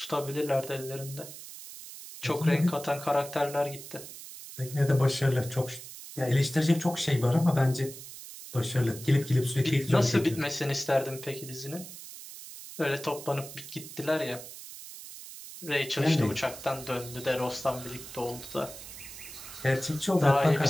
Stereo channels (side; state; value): right; noise; hiss, 13 dB below the sound